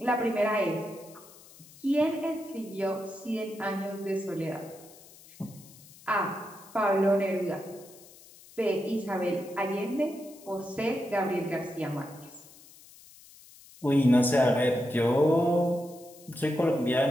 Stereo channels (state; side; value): noise; left; hiss, 22 dB below the sound